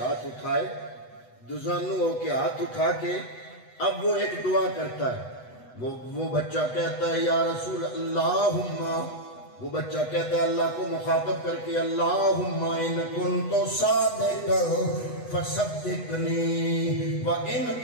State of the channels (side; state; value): right; late; 8.1 ms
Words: اٹھائے، دزانو ہو کے ہاتھ اٹھا کے اب وہ ایک دعا کرتا ہے۔ وہ بچہ کہتا ہے یا رسول اللہم، وہ بچہ کہتا ہے اللہ کو مخاطب کر کے اللہم ان کنت صادقا فصدقنی وان